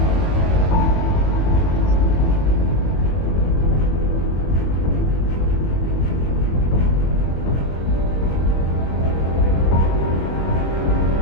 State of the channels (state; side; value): late; right; 22 ms